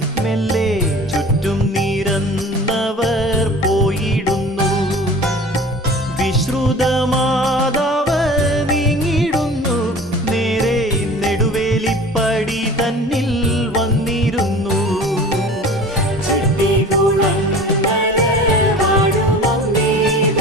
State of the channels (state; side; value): normal; both; correlation 0.42